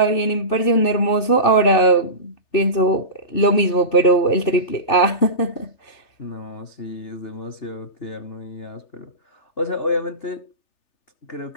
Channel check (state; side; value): late; right; 3.4 ms